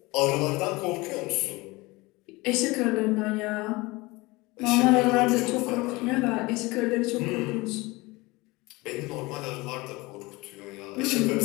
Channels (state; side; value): quieter; right; 22.7 dB